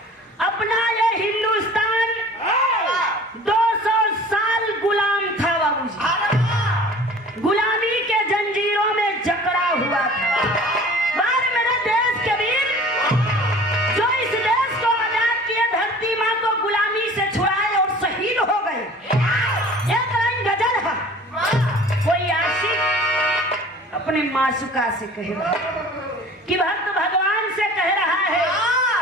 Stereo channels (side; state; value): both; normal; correlation 0.45